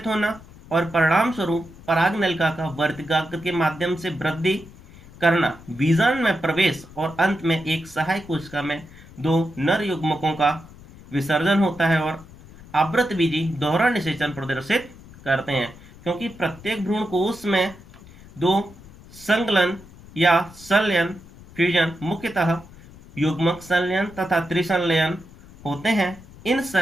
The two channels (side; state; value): left; noise; rumble, 20 dB below the sound